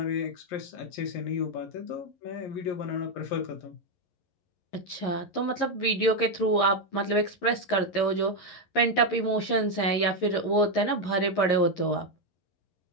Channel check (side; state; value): right; late; 11 ms